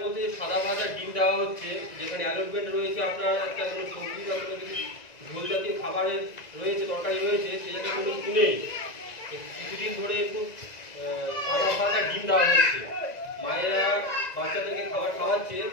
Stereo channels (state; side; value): late; right; 1.9 ms